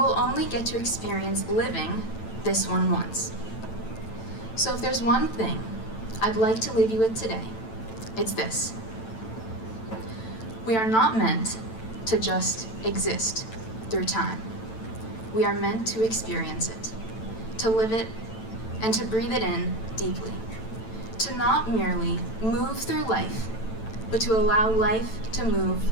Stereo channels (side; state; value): right; late; 9.0 ms